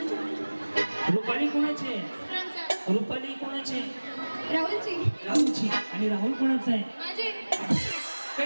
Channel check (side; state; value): both; inverted; correlation -1.00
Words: रुपाली कोणाचे. रुपाली कोणाचे. राहुलची. राहुलची. आणि राहुल कोणाचा आहे. माझे.